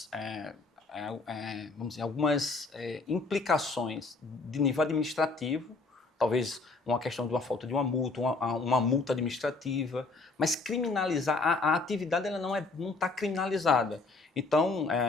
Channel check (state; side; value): quieter; right; 3.8 dB